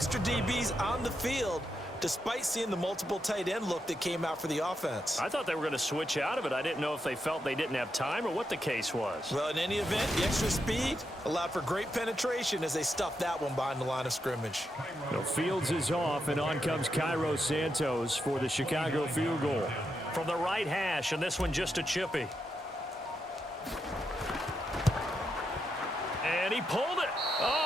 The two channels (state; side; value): normal; both; correlation 0.84